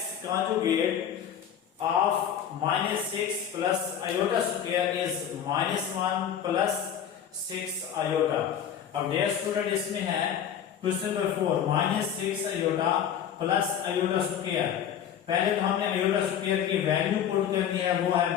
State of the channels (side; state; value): right; quieter; 9.0 dB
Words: conjugate of -6 plus iota square is -1 plus 6 iota. अब डियर स्टूडेंट इसमें है question number 4 -6 iota plus iota square. पहले तो हमने अयोटा स्क्वायर की वैल्यू पुट करनी है, वो है